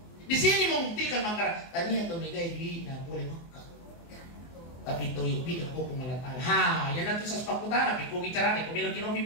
Di sini membuktikan maka tanya atau megai duit na boleh makan. Tapi toyo bi ako pungalatala. Ha, yan natin sa spakutana. Piko bicara ni, kung bilang kinobi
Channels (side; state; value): right; late; 24 ms